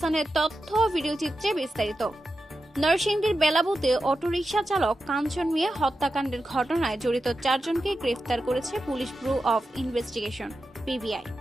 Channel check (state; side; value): normal; both; correlation 0.90